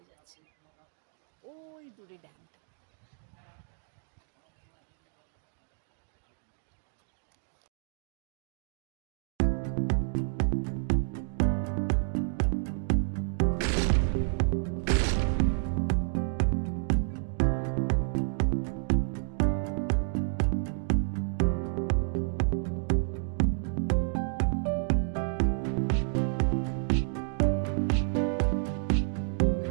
যাচ্ছে, ওই দূরে ড্যামটা।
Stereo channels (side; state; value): left; silent; 58 dB below the other